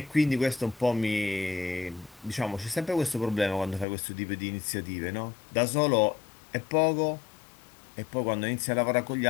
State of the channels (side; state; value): right; drops out; at 3.9 s